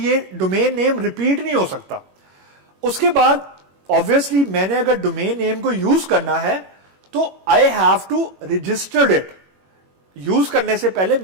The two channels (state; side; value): late; left; 21 ms